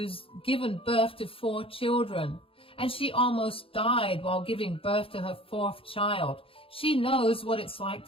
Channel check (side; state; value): right; late; 0.27 ms